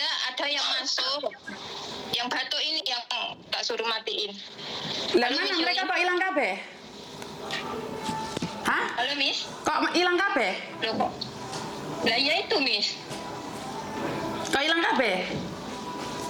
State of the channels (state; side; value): identical; both; correlation 1.00